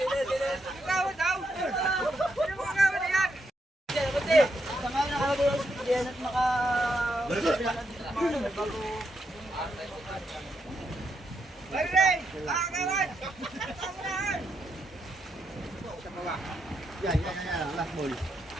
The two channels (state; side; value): normal; both; correlation 0.81